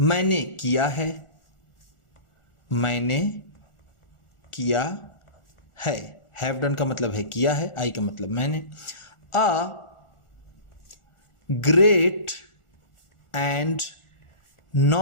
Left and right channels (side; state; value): right; late; 1.4 ms